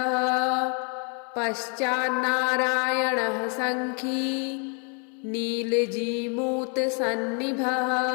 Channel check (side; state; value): right; quieter; 38.4 dB